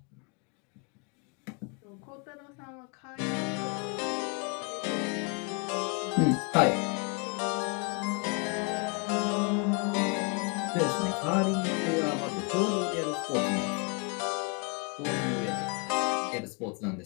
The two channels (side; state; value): right; quieter; 34.0 dB